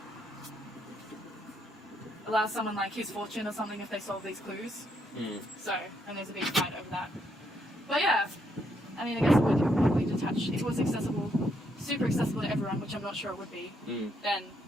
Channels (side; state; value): both; normal; correlation 0.76